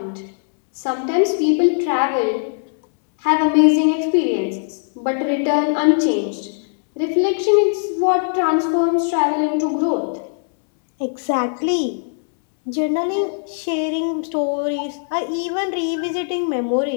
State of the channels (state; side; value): silent; right; 66 dB below the other